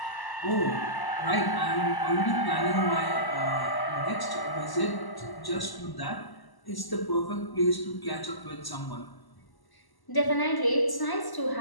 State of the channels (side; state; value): right; late; 1.0 ms